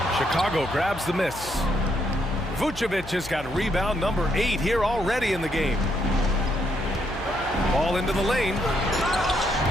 Chicago grabs the miss. Vucevic has got rebound number 8 here already in the game. Ball into the lane.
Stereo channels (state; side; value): noise; left; hum, 14 dB below the sound